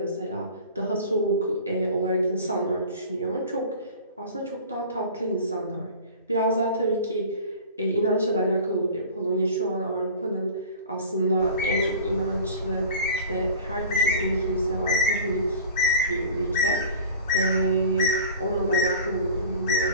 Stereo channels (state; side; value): inverted; both; correlation -0.40